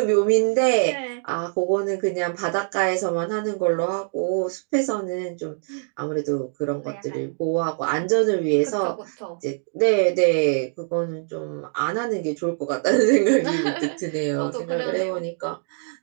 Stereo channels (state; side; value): silent; left; 63 dB below the other